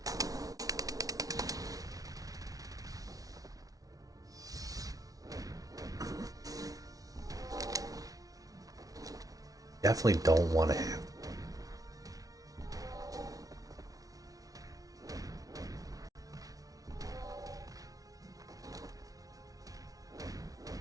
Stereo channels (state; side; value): late; left; 0.18 ms